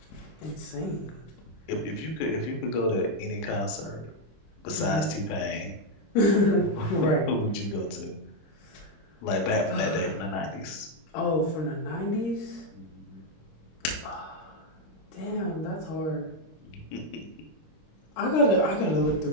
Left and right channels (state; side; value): late; right; 26 ms